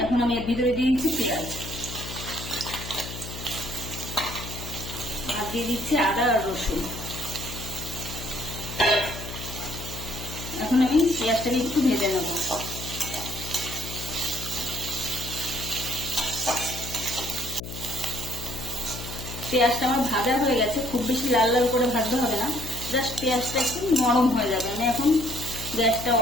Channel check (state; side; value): noise; left; hum, 9 dB below the sound